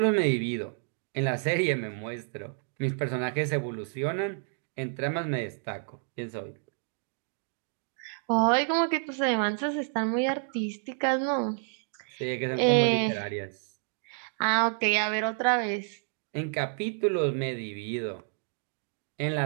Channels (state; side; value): silent; left; 58 dB below the other